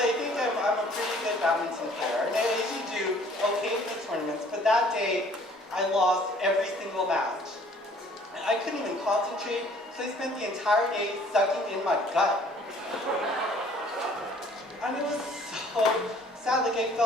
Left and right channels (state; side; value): normal; both; correlation 0.56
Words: think I'm a pretty good badminton player. And I usually do okay in the tournaments, but that day, I lost every single match. And I couldn't even concentrate, so I spent the entire day sucking in my gut. And it was so sad, like I